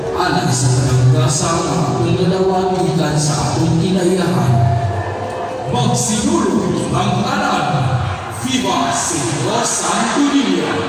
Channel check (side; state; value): both; identical; correlation 1.00